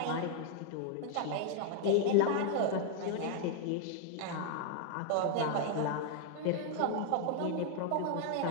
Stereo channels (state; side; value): different; both; correlation 0.00